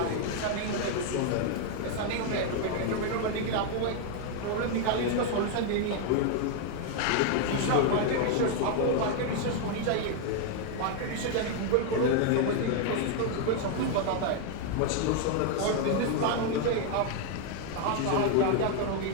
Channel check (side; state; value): both; different; correlation 0.00